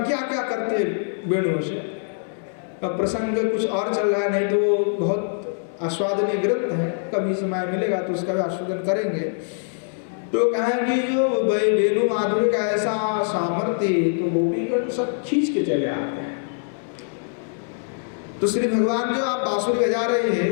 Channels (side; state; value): right; silent; digital silence